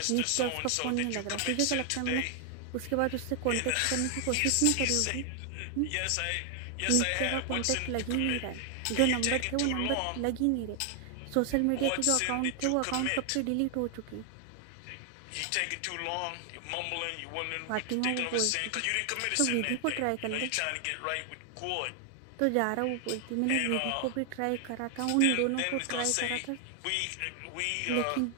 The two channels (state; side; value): different; both; correlation 0.00